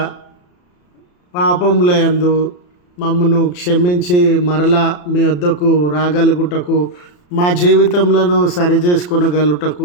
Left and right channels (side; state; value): right; late; 34 ms